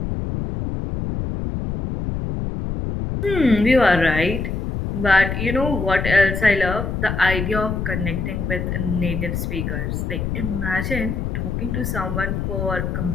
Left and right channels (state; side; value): noise; left; rumble, 2 dB below the sound